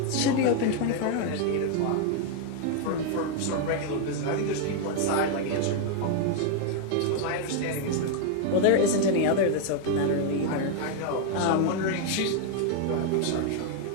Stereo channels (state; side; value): different; both; correlation 0.00